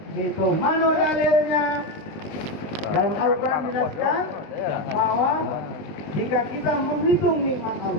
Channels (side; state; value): right; late; 19 ms